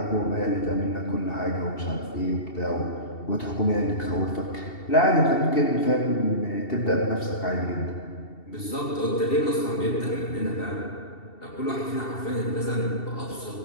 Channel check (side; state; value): right; late; 2.7 ms